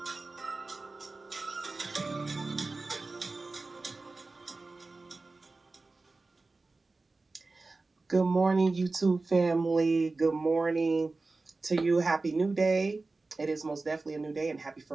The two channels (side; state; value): left; quieter; 3.5 dB